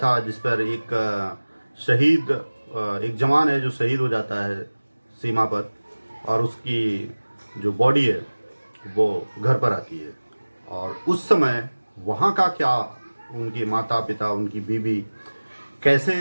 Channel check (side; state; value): both; inverted; correlation -1.00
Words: जिस पर एक शहीद, एक जवान है जो शहीद हो जाता है सीमा पर, और उसकी जो बॉडी है वो घर पर आती है। और उस समय वहाँ का क्या, उनके माता पिता, उनकी बीवी कैसे